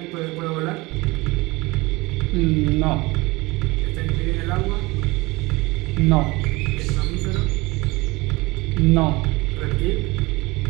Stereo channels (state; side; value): quieter; left; 22.7 dB